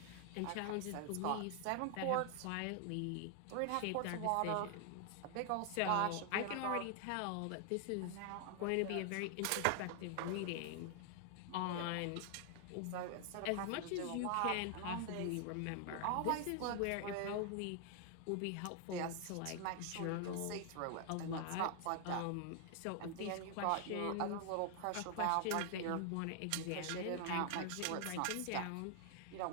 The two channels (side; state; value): both; different; correlation 0.00